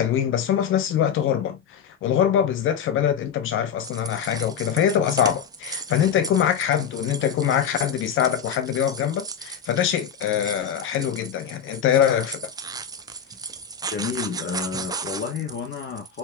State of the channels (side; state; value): right; quieter; 8.1 dB